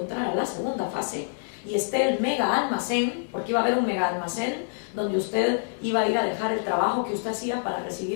entrar a la segunda fase, y esté el mega almacén, porque iba a haber un mega almacén donde usted iba a ir a dejar el trabajo que usted hacía para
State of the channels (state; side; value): silent; right; digital silence